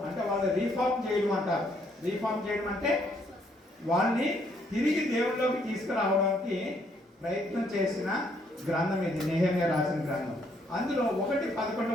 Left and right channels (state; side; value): normal; both; correlation 0.69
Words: అంటే వాళ్ళు రీఫార్మ్ చేయడం అంటారు. రీఫార్మ్ చేయడం అంటే వాళ్ళని తిరిగి దేవుళ్ళలోకి తీసుకురావడానికి ప్రయత్నం చేసిన గ్రంథం ఇది, నెహెమ్యా రాసిన గ్రంథం. అందులో 1:11